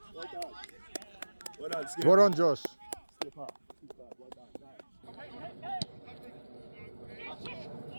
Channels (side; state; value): both; inverted; correlation -1.00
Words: Well done, Skip. Well done, Josh. Skip up. Well done, nice.